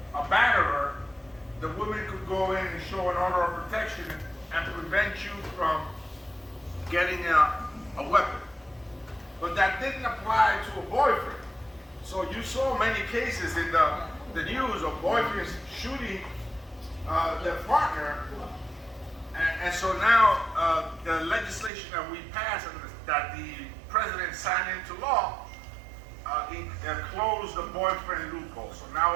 a batterer, the woman could go in and show an order of protection and prevent you from getting a weapon. But that didn't apply to a boyfriend. So you saw many cases in the news of boyfriends shooting their partner. And so now the legislation that we passed and that the president signed into law closed the boyfriend loophole. So now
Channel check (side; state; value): left; drops out; at 21.7 s